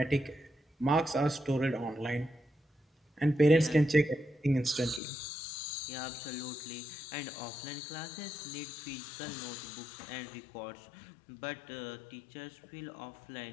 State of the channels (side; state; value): right; drops out; at 5.0 s